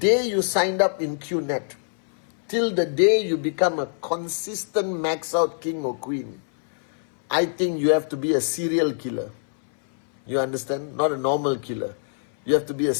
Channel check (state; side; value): silent; right; 60 dB below the other